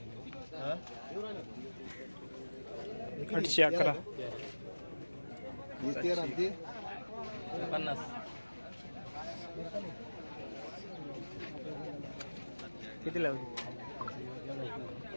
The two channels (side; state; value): both; inverted; correlation -1.00